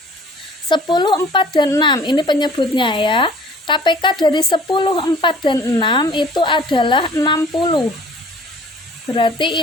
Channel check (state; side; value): normal; both; correlation 0.51